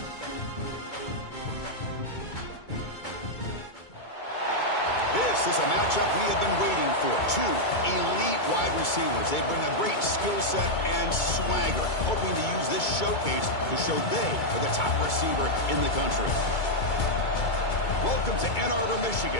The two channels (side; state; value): right; late; 2.2 ms